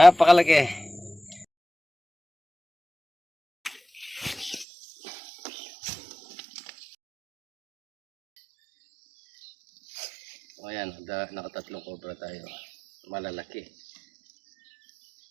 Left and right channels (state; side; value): drops out; left; at 4.7 s